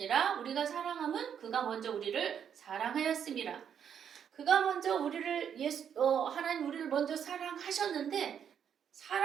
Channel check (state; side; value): quieter; left; 8.3 dB